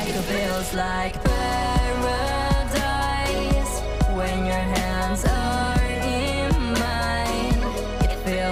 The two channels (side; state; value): both; identical; correlation 1.00